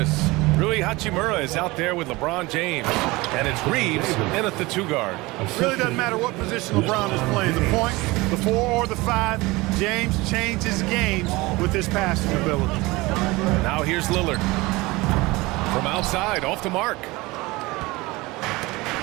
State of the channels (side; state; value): left; quieter; 22.0 dB